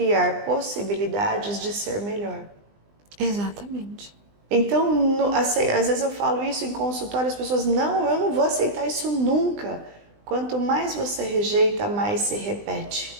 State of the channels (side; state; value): left; late; 20 ms